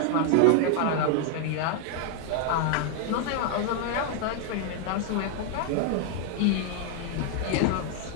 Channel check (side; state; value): both; different; correlation 0.00